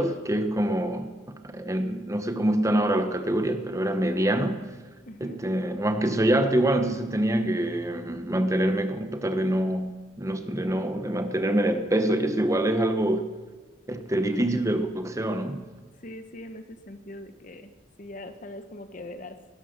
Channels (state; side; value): normal; both; correlation 0.77